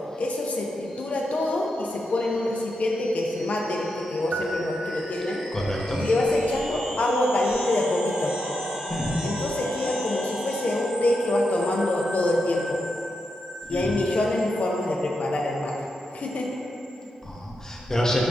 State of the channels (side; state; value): both; normal; correlation 0.85